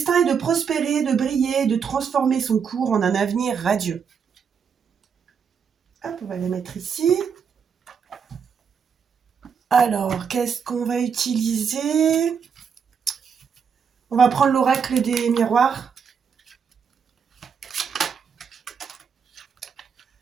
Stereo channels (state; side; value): quieter; left; 6.7 dB